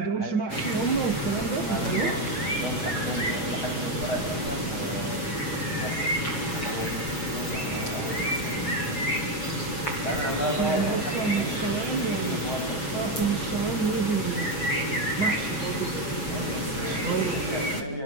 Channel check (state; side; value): late; right; 7.1 ms